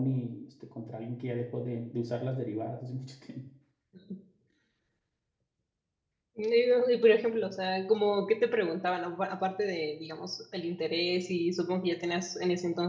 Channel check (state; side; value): identical; both; correlation 1.00